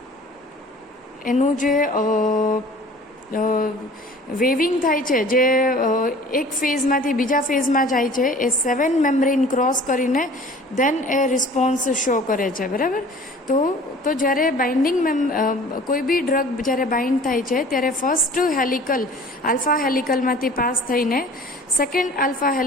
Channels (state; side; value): normal; both; correlation 0.46